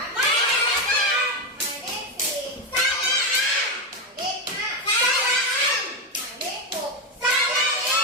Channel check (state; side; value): normal; both; correlation 0.10